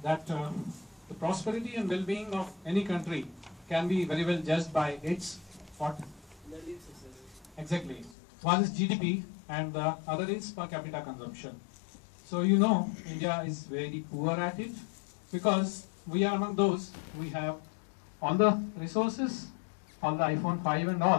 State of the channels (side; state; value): right; drops out; at 8.2 s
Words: that the prosperity and well-being of any country can be very well judged by its what? Exactly. One is GDP and the other is per capita consumption. So you know India is very poor at it because we are among those, we have all the resources, all the iPhone 5 and